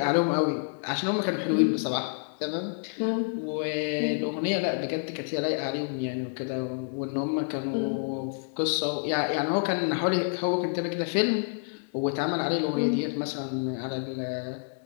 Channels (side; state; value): right; silent; 59 dB below the other